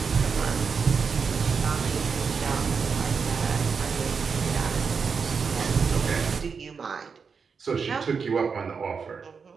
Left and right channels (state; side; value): quieter; left; 5.7 dB